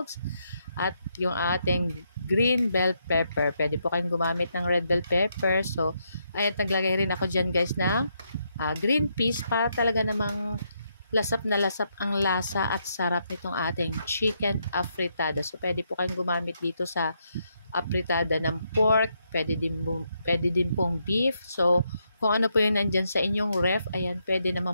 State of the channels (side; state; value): both; inverted; correlation -0.78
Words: at yung ating green bell pepper. Pwede po kayong gumamit ng red bell pepper. So, ayan, naglagay rin ako dyan guys ng green peas para talaga namang lasap na lasap ang lasa at sarap nitong ating chicken afritada. So, pwede po kayong gumamit dito sa afritada ng pork, pwede din pong beef. So, kung ano po yung nandyan sa inyong ref, ayan, pwede